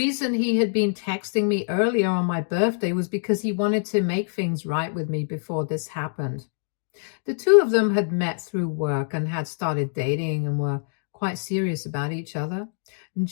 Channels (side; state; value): right; silent; digital silence